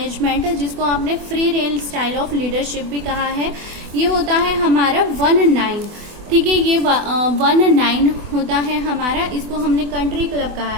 जिसको आपने free range style of leadership भी कहा है। ये होता है हमारा 1-9, ठीक है, ये 1-9 होता है हमारा, इसको हमने कंट्री क्लब कहा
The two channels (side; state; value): left; late; 24 ms